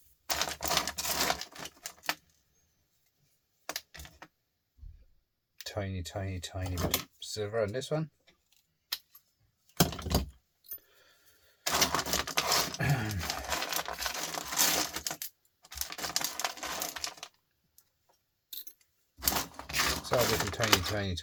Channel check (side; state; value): both; identical; correlation 1.00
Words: Tiny bit of silver on this one. So little